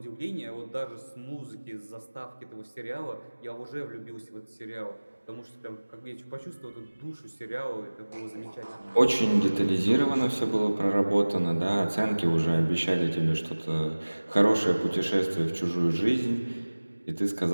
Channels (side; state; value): both; inverted; correlation -1.00